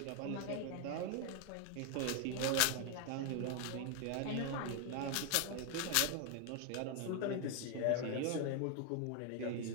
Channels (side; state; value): both; different; correlation 0.00